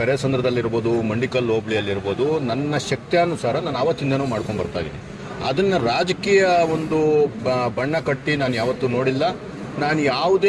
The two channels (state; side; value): identical; both; correlation 1.00